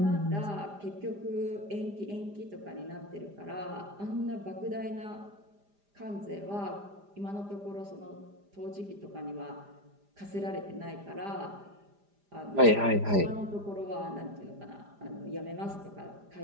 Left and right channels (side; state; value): left; late; 5.0 ms